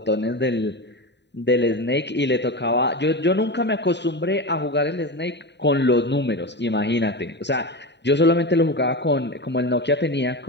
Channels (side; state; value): right; late; 0.50 ms